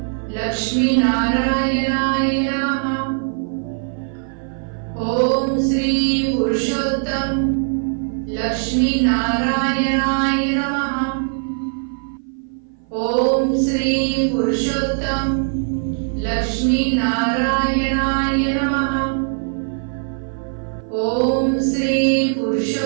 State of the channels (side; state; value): left; silent; 57 dB below the other